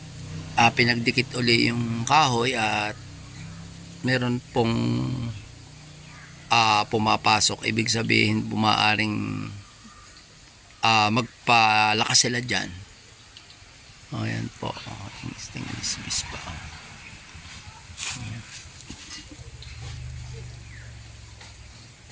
pinagdikit uli yung kahoy at meron pong pumapasok. Ibig sabihin bumaaring magpalakas sila dyan. Ayan po, stainless bees pa.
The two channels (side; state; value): both; identical; correlation 1.00